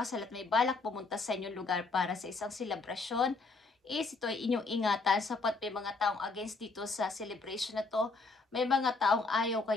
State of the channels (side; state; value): right; quieter; 3.8 dB